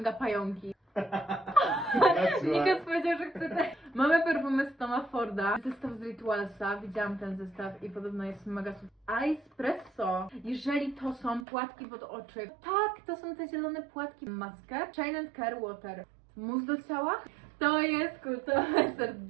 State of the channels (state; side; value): drops out; left; at 11.5 s